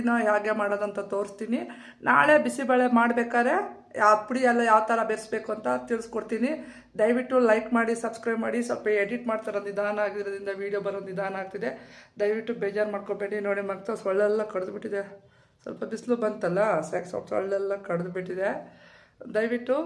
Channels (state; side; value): identical; both; correlation 1.00